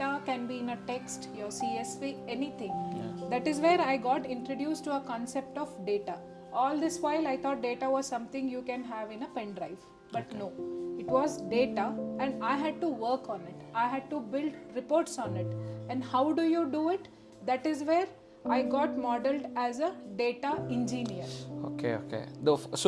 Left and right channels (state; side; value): identical; both; correlation 1.00